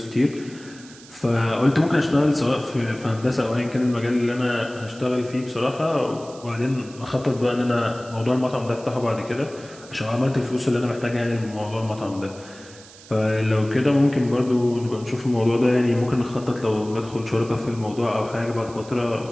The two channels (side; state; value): right; noise; hiss, 21 dB below the sound